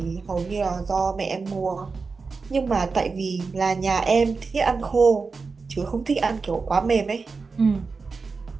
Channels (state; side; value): quieter; left; 4.5 dB